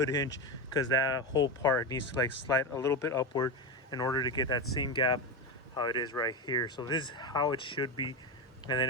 hinge, because that whole part needs to like slide a little bit upward in order to get that same gap how it is right here. So this is how it should be. And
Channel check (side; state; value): both; normal; correlation 0.16